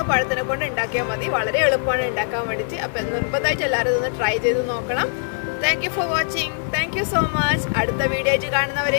പഴത്തിനെ കൊണ്ട് ഉണ്ടാക്കിയാൽ മതി. വളരെ എളുപ്പമാണ് ഉണ്ടാക്കാൻ വേണ്ടിയിട്ട്. അപ്പൊ നിർബന്ധമായിട്ട് എല്ലാവരും ഇതൊന്ന് ട്രൈ ചെയ്ത് നോക്കണം. Thank you for watching. Thank you so much. അടുത്ത വീഡിയോ ആയിട്ട്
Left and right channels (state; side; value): silent; right; 64 dB below the other